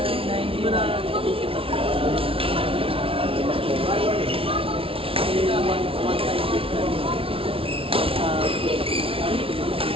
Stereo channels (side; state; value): left; late; 0.26 ms